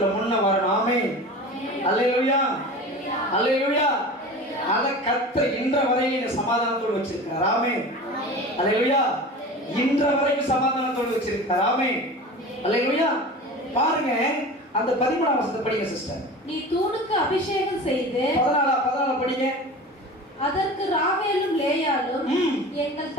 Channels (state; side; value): normal; both; correlation 0.35